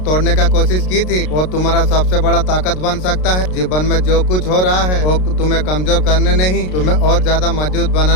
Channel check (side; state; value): right; late; 33 ms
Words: तोड़ने का कोशिश की थी, वो तुम्हारा सबसे बड़ा ताकत बन सकता है। जीवन में जो कुछ हो रहा है वो तुम्हें कमजोर करने नहीं, तुम्हें और ज्यादा मजबूत